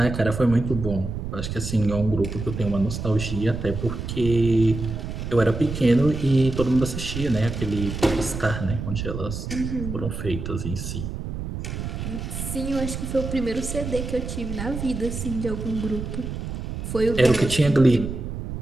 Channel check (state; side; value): noise; right; rumble, 6 dB below the sound